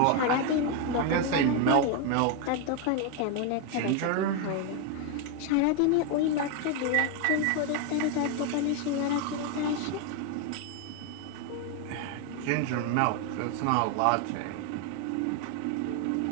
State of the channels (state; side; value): different; both; correlation 0.01